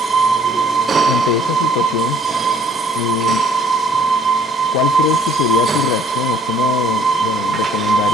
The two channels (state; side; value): normal; both; correlation 0.59